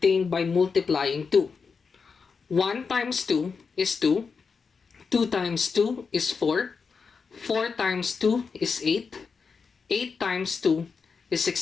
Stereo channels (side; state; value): right; quieter; 5.3 dB